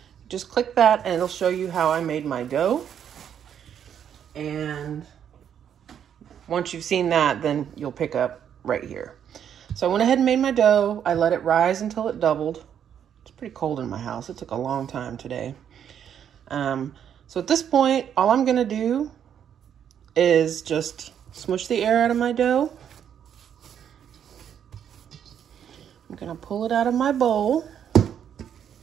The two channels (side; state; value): left; quieter; 8.9 dB